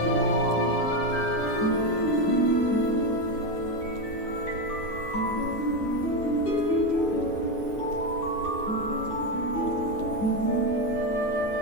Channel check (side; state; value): right; late; 9.5 ms